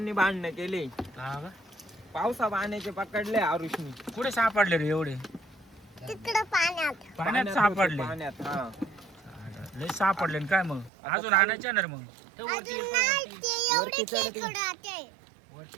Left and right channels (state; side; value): drops out; left; at 10.9 s